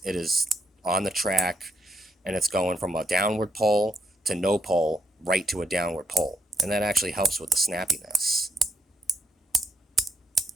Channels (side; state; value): both; normal; correlation 0.79